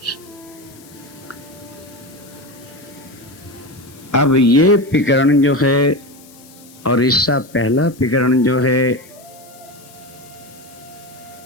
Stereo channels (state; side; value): noise; left; hiss, 24 dB below the sound